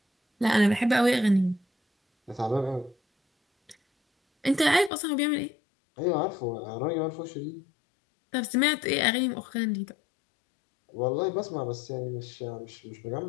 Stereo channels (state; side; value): drops out; right; at 4.9 s